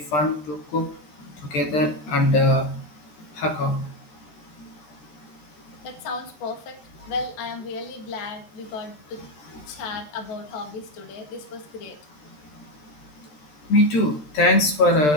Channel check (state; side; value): late; right; 13 ms